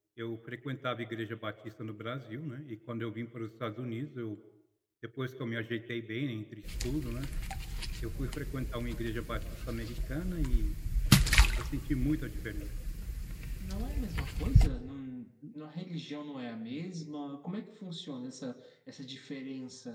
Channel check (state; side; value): identical; both; correlation 1.00